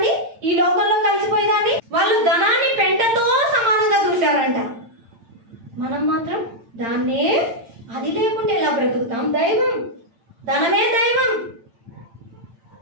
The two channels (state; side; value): late; left; 8.8 ms